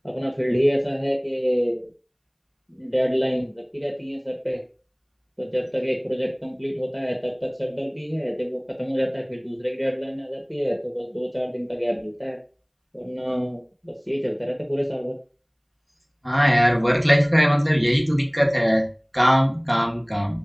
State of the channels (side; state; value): both; identical; correlation 1.00